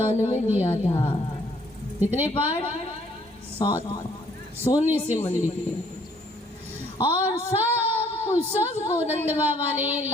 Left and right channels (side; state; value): both; normal; correlation 0.63